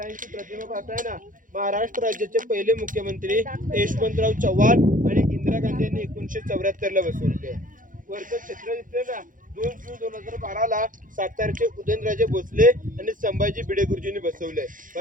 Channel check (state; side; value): late; left; 0.39 ms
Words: प्रतिमा पाहताय ना. महाराष्ट्र राज्याचे पहिले मुख्यमंत्री यशवंतराव चव्हाण आणि इंदिरा गांधी यांनी 1974 ला बसवले. वरचं चित्र दिसतंय ना, 2 जून 2012 सातारचे उदयनराजे भोसले आणि संभाजी भिडे गुरुजींनी बसवले.